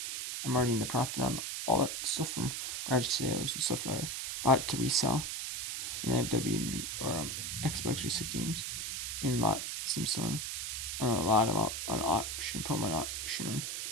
I'm already in the profit on all that stuff from garage sales and stuff I bought to resell. And I have WB or Xbox 360 games in lots I'm selling. A lot of them up on auction, put them on auction.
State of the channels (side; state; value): right; noise; hiss, 4 dB below the sound